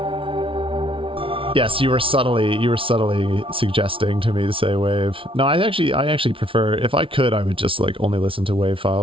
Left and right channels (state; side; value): late; left; 0.25 ms